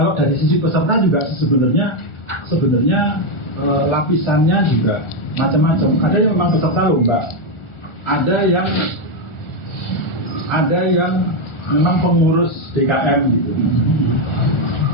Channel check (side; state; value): right; late; 1.4 ms